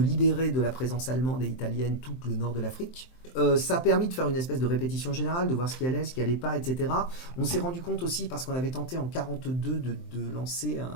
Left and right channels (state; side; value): late; right; 23 ms